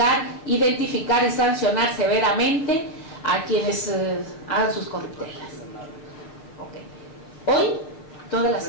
identificar y sancionar severamente a quienes hagan sus corruptelas. Okay. Hoy, toda la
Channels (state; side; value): late; right; 6.5 ms